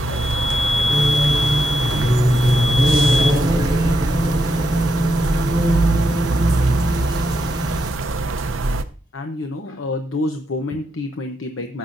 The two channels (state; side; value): normal; both; correlation 0.82